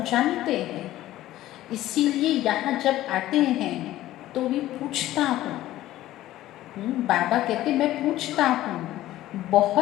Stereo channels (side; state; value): right; quieter; 14.8 dB